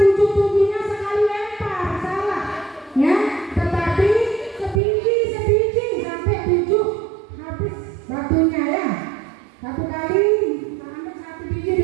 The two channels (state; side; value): drops out; left; at 4.8 s